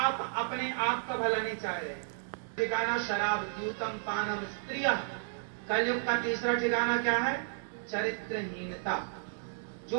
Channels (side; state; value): left; silent; digital silence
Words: अपने आप का भला नहीं चाह रहे। ठिकाना शराब, द्यूतम पानम स्त्रिय। कलयुग का तीसरा ठिकाना क्या है? चरित्रहीनता। जो